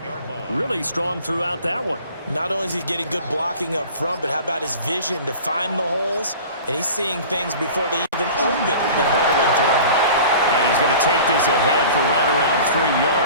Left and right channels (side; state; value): both; inverted; correlation -0.41